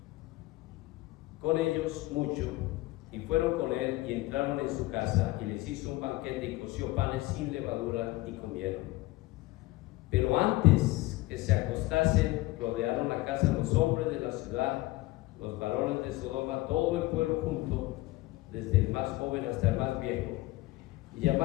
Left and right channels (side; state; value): right; quieter; 19.5 dB